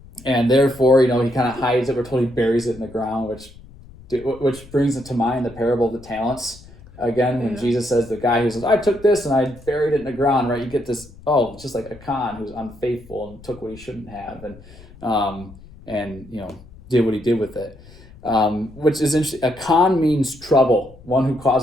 And therefore, he kind of hides it. We're told he buries it in the ground, which brings it to mind the parable of the talents. Again, when Jesus says the guy who says, I took this and I buried it in the ground, right? You get this, just like Achan, who's unfaithful and took what he shouldn't have and did what he did with it. Which is interesting. Achan means trouble, one who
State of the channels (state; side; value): noise; left; rumble, 21 dB below the sound